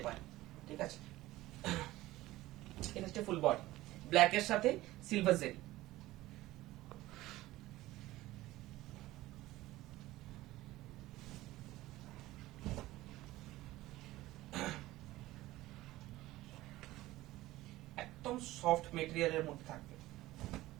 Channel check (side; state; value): left; quieter; 17.1 dB